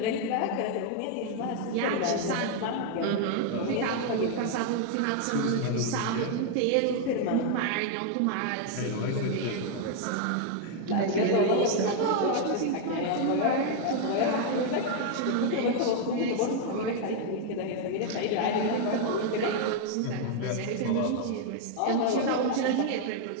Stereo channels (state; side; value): different; both; correlation 0.00